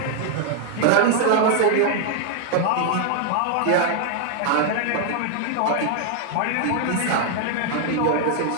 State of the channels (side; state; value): both; different; correlation 0.00